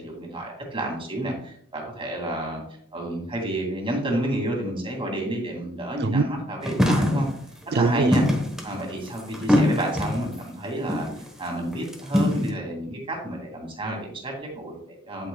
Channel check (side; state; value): both; normal; correlation 0.69